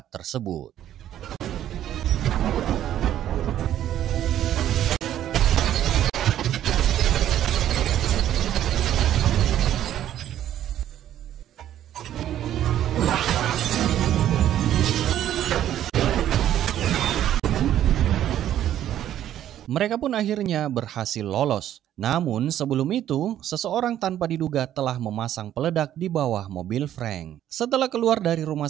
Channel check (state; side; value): quieter; left; 11.6 dB